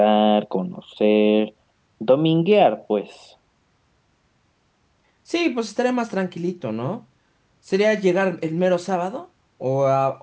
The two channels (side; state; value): both; identical; correlation 1.00